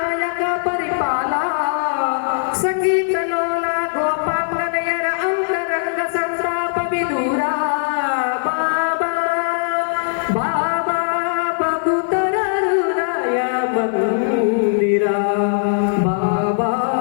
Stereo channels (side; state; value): right; silent; 58 dB below the other